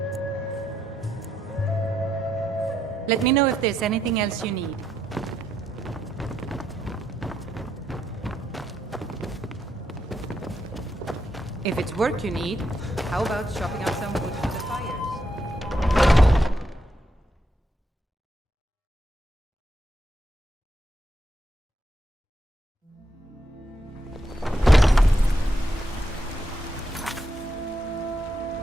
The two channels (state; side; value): normal; both; correlation 0.81